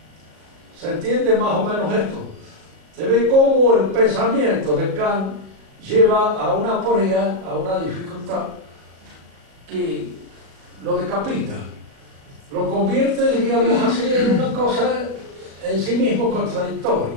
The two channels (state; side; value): late; left; 37 ms